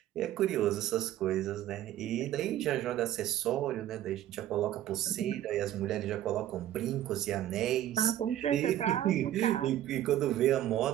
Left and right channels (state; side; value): quieter; left; 12.5 dB